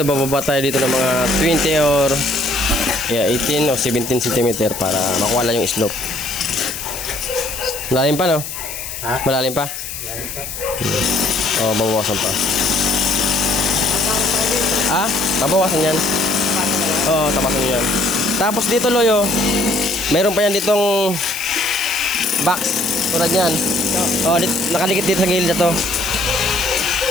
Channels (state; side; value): noise; left; hiss, 8 dB below the sound